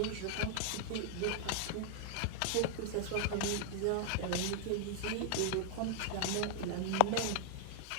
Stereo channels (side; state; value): both; different; correlation 0.00